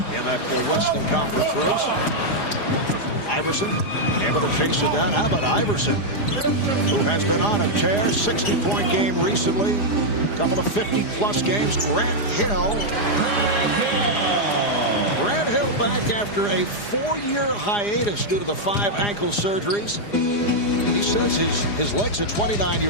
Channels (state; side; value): late; right; 4.9 ms